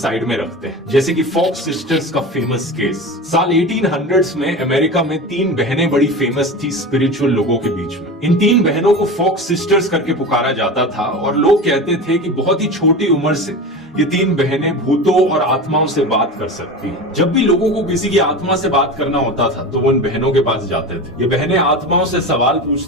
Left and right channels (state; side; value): normal; both; correlation 0.28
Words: में रखते हैं, जैसे कि फॉक्स सिस्टर्स का फेमस केस। साल 1800s में अमेरिका में 3 बहनें बड़ी फेमस थी स्पिरिचुअल लोगों के बीच में। इन 3 बहनों को फॉक्स सिस्टर्स करके पुकारा जाता था और लोग कहते थे कि बहुत ही छोटी उम्र से ये 3 बहनें भूतों और आत्माओं से बात कर सकती हैं। जब भी लोगों को किसी की आत्मा से बात करना होता था तो वो इन बहनों के पास जाते थे। ये बहनें आत्माओं से सवाल